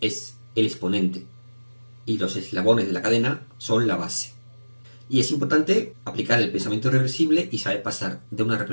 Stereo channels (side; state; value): both; inverted; correlation -1.00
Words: el exponente y los eslabones de la cadena son la base. Y es importante aplicar el pensamiento reversible y saber pasar de una